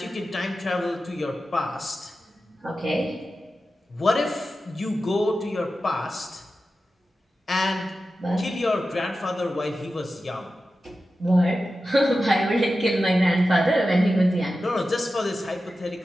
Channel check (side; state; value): both; normal; correlation 0.93